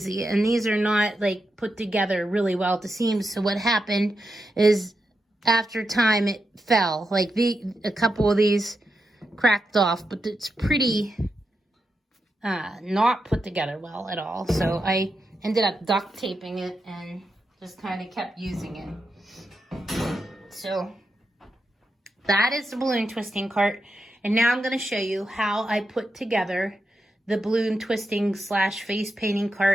and these are not like put together really well at the seams. So what happened is after time it fell. Like a couple of these cracked off, but it's pretty not put together well at all. So I ended up duct taping it and just kind of kept using it. So that is the balloon twisting cart. And now I'm going to show you how I put together the balloon twisting / face painting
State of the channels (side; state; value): both; normal; correlation 0.87